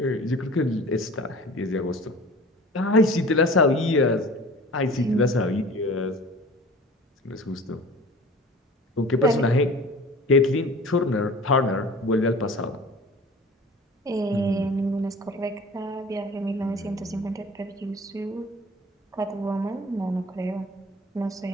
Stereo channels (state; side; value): normal; both; correlation 0.42